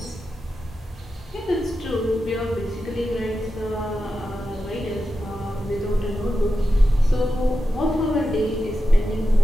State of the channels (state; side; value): normal; both; correlation 0.90